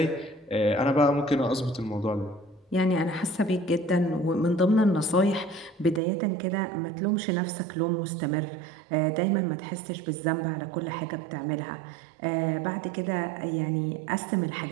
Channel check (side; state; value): left; drops out; at 6.0 s